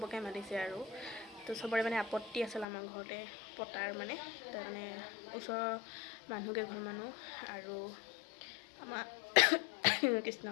মাতিছে আৰু তো চবৰে মানে আপত্তি আছিল আমাৰ ঘৰতে পতাৰ মানে, তাৰ কাৰণে ওচৰৰ মানুহকেইঘৰ মানুহ আৰু আমাৰ কৃষ্ণ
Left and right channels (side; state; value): right; drops out; at 2.7 s